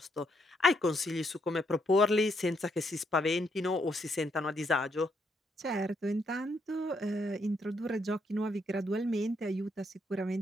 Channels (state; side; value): normal; both; correlation 0.75